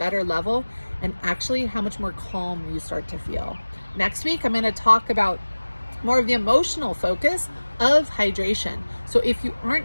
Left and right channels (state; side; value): inverted; both; correlation -1.00